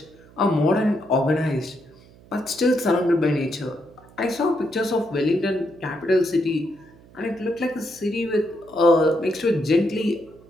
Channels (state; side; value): noise; right; hum, 25 dB below the sound